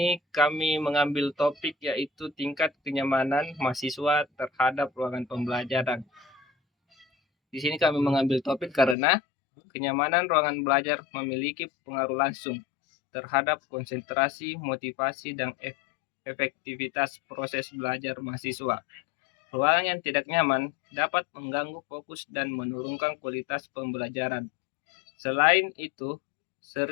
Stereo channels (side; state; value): right; drops out; at 9.0 s